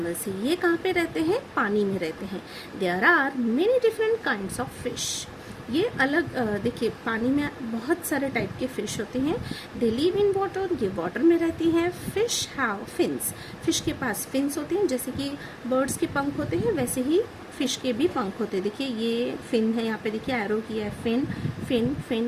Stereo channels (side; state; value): both; identical; correlation 1.00